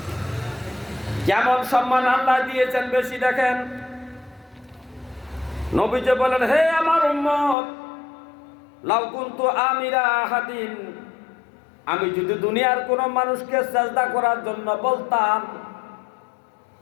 কেমন সম্মান আল্লাহ দিয়েছেন বেশি দেখেন। নবীজি বলেন, হে আমার উম্মত, লাউ কুনতু আমিরা আহাদিন, আমি যদি দুনিয়ার কোন মানুষকে সিজদা করার জন্য বলতাম,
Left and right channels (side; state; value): right; drops out; at 7.6 s